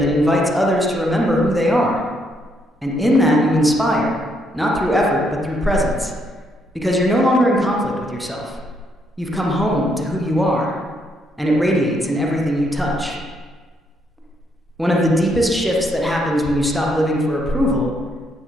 invites others to remember who they are. And in that you inspire, not through effort, but through presence. Because you're no longer in conflict with yourself. You've come home to who you are, and it radiates in everything you touch. One of the deepest shifts that happens when you stop living for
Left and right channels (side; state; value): both; normal; correlation 0.74